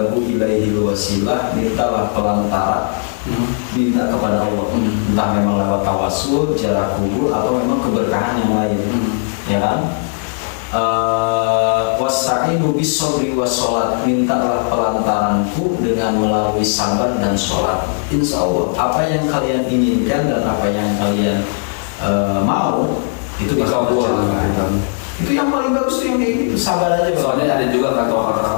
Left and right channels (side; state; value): right; silent; 57 dB below the other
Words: ilaihi wasilah, mintalah pelantara, minta kepada Allah, entah memang lewat tawasul, jarak kubur, atau memang keberkahan yang lain, ya kan? Wasta'inu bis-shabri was-sholat, mintalah pelantaranku dengan melalui sabar dan sholat. Insya Allah apa yang kalian inginkan dan apa yang kalian mau itu dikabulkan. Itu yang paling bagus tuh yang kayak gitu, sabar aja. Soalnya ada juga kata